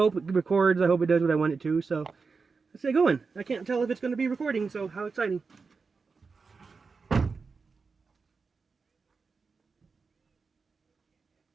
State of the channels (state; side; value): quieter; left; 4.7 dB